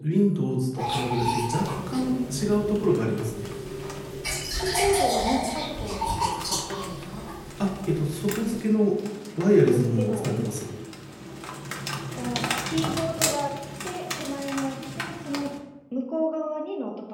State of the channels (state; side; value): identical; both; correlation 1.00